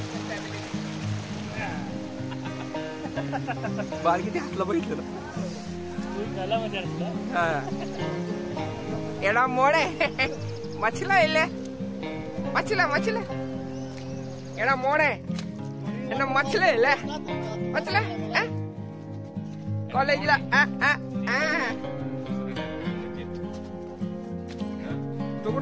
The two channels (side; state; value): both; identical; correlation 1.00